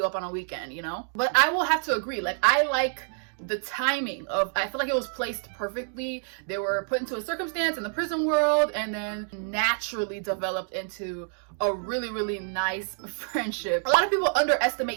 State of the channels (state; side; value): silent; left; 60 dB below the other